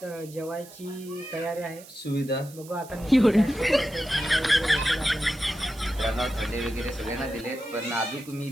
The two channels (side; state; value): right; noise; hiss, 19 dB below the sound